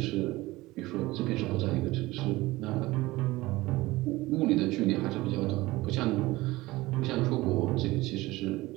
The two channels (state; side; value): quieter; left; 19.5 dB